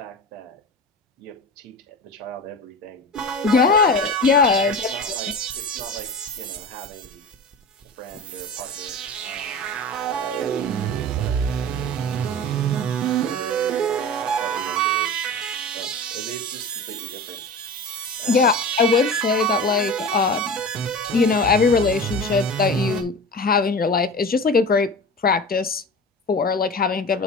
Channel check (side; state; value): both; normal; correlation 0.32